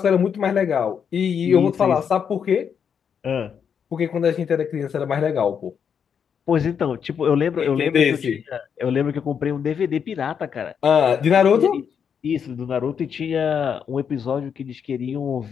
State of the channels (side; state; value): right; quieter; 7.3 dB